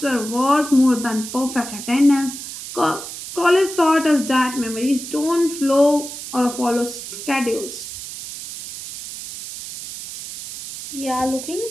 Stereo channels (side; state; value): right; noise; hiss, 10 dB below the sound